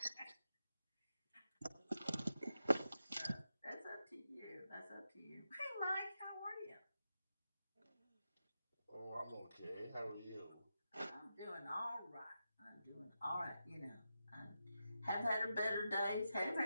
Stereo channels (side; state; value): both; inverted; correlation -0.88